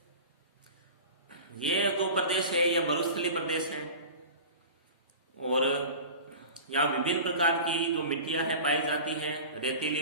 ये जो प्रदेश है ये मरुस्थलीय प्रदेश है और यहाँ विभिन्न प्रकार की जो मिट्टियां हैं पाई जाती है। रेतीली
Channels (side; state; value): both; inverted; correlation -0.35